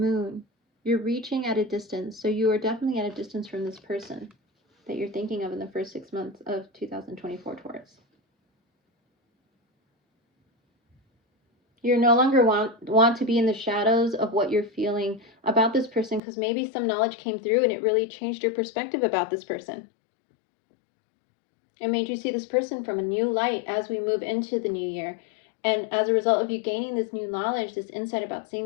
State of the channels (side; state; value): right; drops out; at 16.2 s